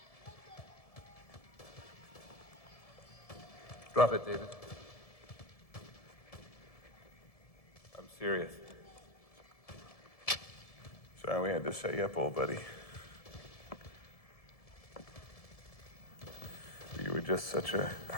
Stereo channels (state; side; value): late; right; 1.7 ms